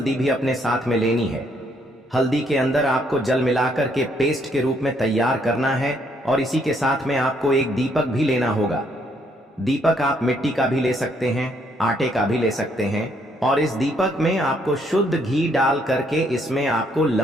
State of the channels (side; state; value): both; normal; correlation 0.70